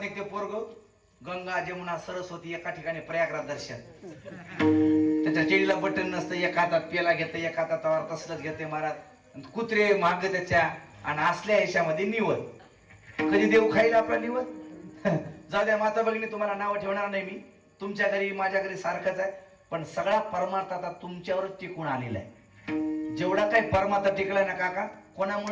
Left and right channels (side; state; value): both; identical; correlation 1.00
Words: पोरग. गंगा जमुना सरस्वती एका ठिकाणी प्रयागराज दर्शन. त्याच्या चेडीला बटन नसतं, एका हातात पेला घेते, एका हातात तवार तसलंच घेते महाराज. कुत्रे माग त्याच्या आणि असल्या ह्याच्यामध्ये निवद. कधी देव खाईल आपला निवद? जाऊ द्या माता भगिनी, तुम्हाला नाव ठेवणार नाही मी. तुमच्या घरी माझ्या घरी सारखंच आहे, पण सगळा परमार्थ आता तुमच्यावरच टिकून आलेला आहे. जेवढा काही परमार्थ टिकलाय ना काका,